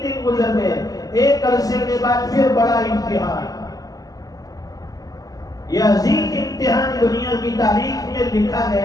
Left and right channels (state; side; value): late; right; 0.17 ms